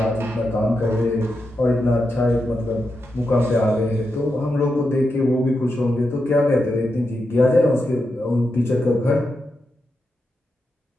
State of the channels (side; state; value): both; normal; correlation 0.87